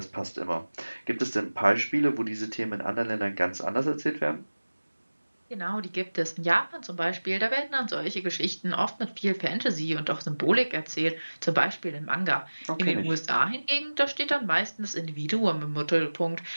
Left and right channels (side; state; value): both; inverted; correlation -1.00